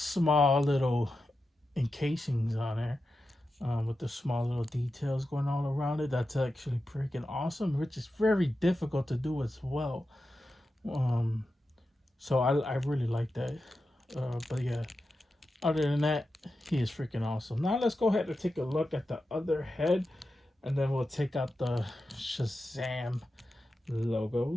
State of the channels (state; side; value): normal; both; correlation 0.90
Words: little encasings on there, with the small little details going all around it. That's actually freaking awesome, which is very difficult to do as well. Um, so I really like that. But yeah, other than that, he is freaking awesome. Now let's go ahead and take a look at the other head, and then we'll take out the Shazam